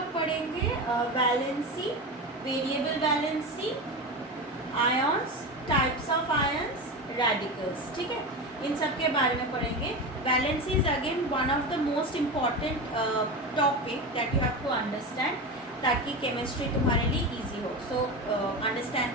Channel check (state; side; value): normal; both; correlation 0.23